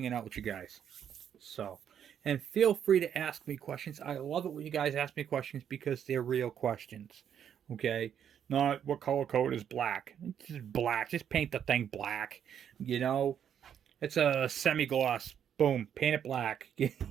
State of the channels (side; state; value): left; quieter; 8.9 dB